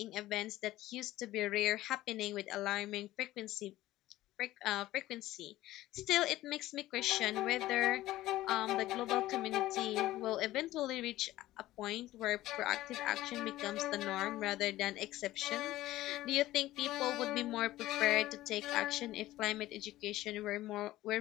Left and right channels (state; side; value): quieter; right; 15.9 dB